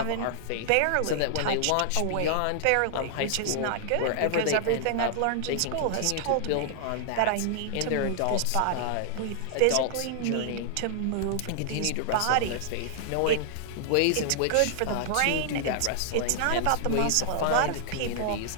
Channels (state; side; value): different; both; correlation -0.01